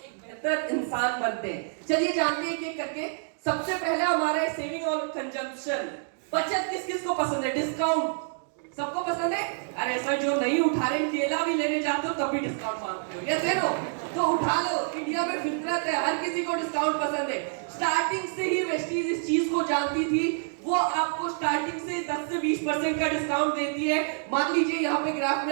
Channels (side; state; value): left; silent; digital silence